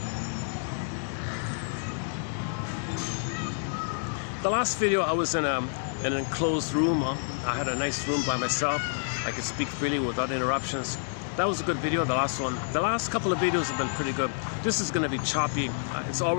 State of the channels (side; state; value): right; silent; digital silence